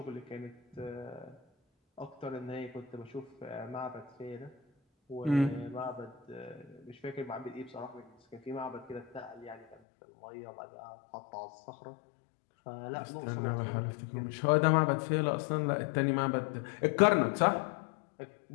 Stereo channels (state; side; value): drops out; right; at 9.8 s